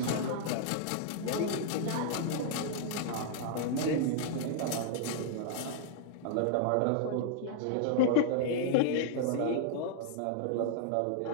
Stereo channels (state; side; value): different; both; correlation -0.01